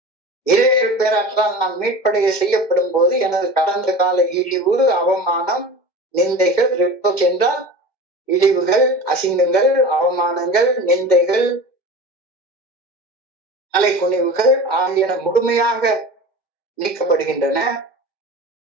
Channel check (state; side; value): late; right; 2.1 ms